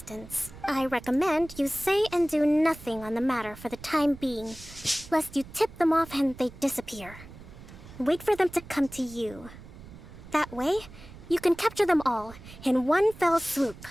I recommend you say and do nothing on the matter for the time being, lest you tip them off and they disappear. Wait for them to come to you. That way, you can capture them all in one fell swoop.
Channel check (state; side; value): noise; right; rumble, 17 dB below the sound